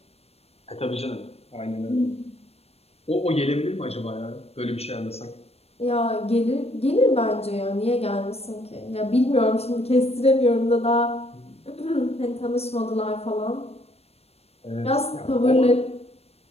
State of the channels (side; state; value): right; late; 0.30 ms